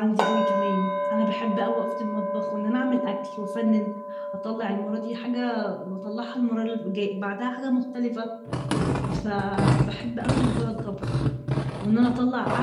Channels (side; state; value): both; identical; correlation 1.00